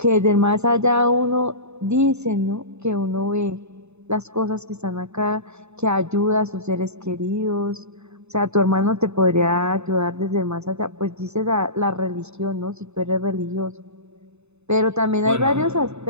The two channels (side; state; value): left; late; 0.81 ms